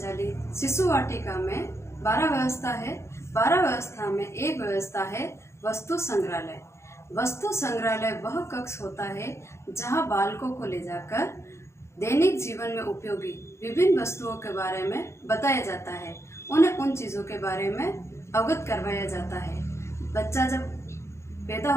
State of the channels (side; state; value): right; late; 0.13 ms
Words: शिशु वाटिका में 12 व्यवस्था है। 12 व्यवस्था में एक व्यवस्था है वस्तु संग्रहालय। वस्तु संग्रहालय वह कक्ष होता है जहां बालकों को ले जाकर दैनिक जीवन में उपयोगी विभिन्न वस्तुओं के बारे में बताया जाता है। उन्हें उन चीज़ों के बारे में अवगत करवाया जाता है। बच्चा जब पैदा